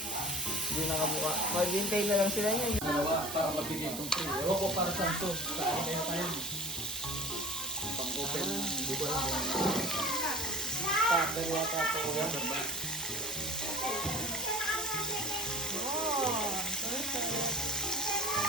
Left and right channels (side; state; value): right; noise; hiss, 8 dB below the sound